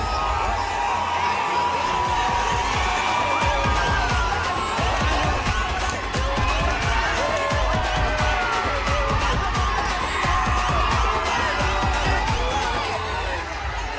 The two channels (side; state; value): both; identical; correlation 1.00